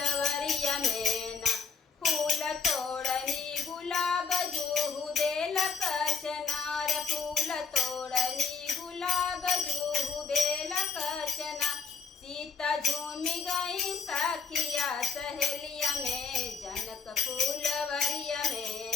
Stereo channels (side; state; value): right; quieter; 5.4 dB